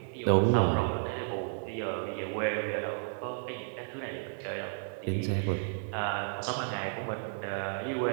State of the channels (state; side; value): silent; left; digital silence